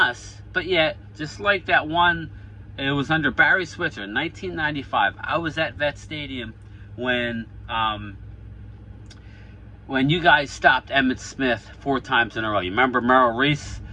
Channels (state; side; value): identical; both; correlation 1.00